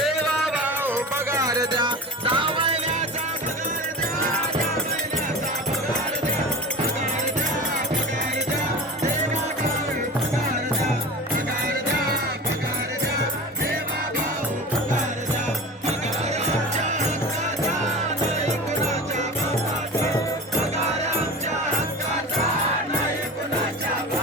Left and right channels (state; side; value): normal; both; correlation 0.32